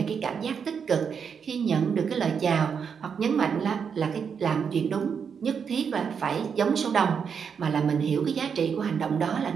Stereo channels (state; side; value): quieter; left; 6.7 dB